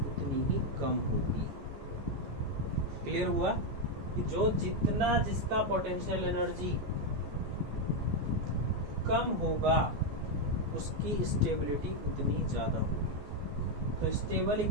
ही कम होगी। क्लियर हुआ कि जो जितना जिसका पोटेंशियल एनर्जी कम होगा उसकी स्टेबिलिटी उतनी ज्यादा होगी। तो स्टेबल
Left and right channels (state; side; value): late; left; 14 ms